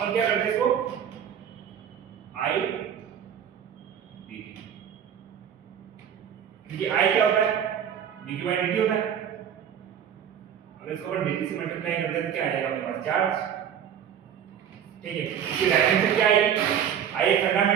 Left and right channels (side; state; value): left; quieter; 8.8 dB